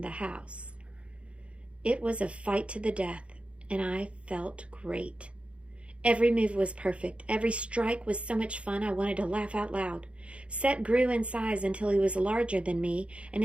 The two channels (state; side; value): late; left; 0.060 ms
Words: the house. It was a fight to the death, and I felt great. Every move was perfect. Every strike was so much fun I wanted to laugh out loud. Set grew in size until he was larger than me, and